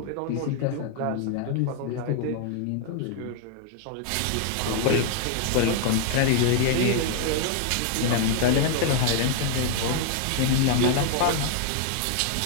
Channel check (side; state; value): both; different; correlation 0.00